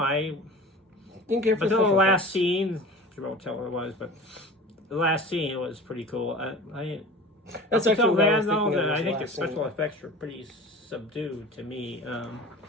Didn't care for Until the special last effects. scene, I won't tell what it was, but the last scene was pretty cool. That's Up actually until what I then, was though, thinking of I as think the last scene. special effects were pretty subdued to me.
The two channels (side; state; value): both; normal; correlation 0.38